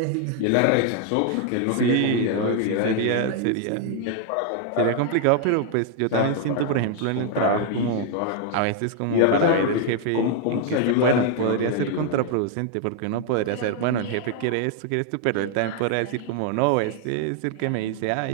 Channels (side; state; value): both; different; correlation 0.00